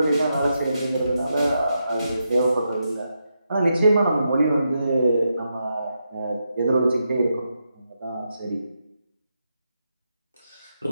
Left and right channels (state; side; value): inverted; both; correlation -0.84